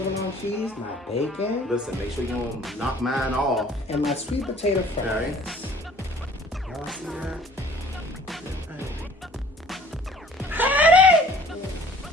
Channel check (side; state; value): both; normal; correlation 0.52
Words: cheese, my bacon, Listen, make sure you don't knock mine off. and my sweet potato fries. Okay. Y'all see that?